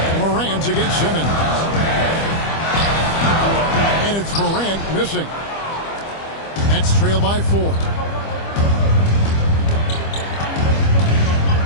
Morant against Simmons. And it's Morant missing. Nets trail by 4.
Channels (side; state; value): right; late; 25 ms